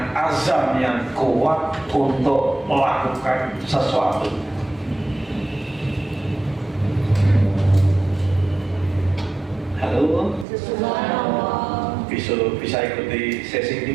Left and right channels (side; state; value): left; drops out; at 10.5 s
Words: azam yang kuat untuk melakukan sesuatu. Halo? Bisa ikuti sesi ini